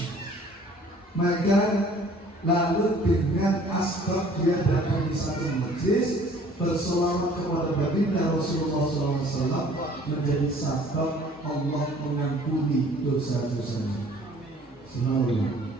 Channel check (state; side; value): normal; both; correlation 0.54